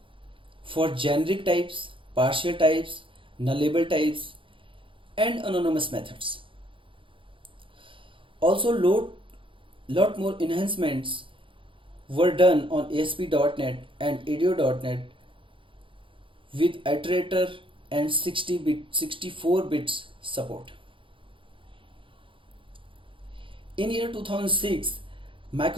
for generic types, partial types, nullable types, and anonymous methods. Also, lot more enhancements were done on ASP.NET and ADO.NET with iterator and 64 bits support. In year 2006,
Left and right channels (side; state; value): left; late; 0.25 ms